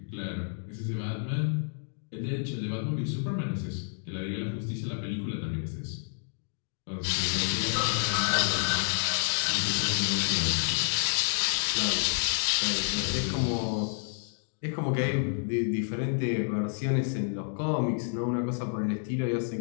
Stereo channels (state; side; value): silent; right; digital silence